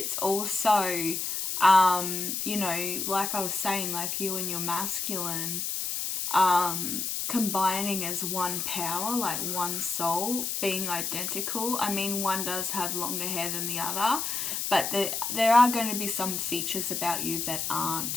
also, you know, like I was saying, like you and your masculine, combining as one power, like one soul, being identical. I mean, one does have longer hair than the other, but there are going to be some features about you that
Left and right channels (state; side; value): noise; left; hiss, 2 dB below the sound